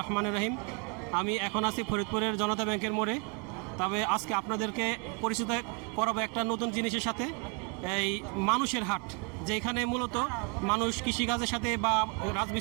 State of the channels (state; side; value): quieter; left; 34.4 dB